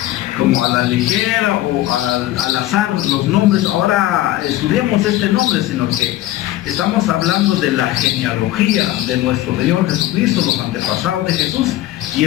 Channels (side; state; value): right; quieter; 15.1 dB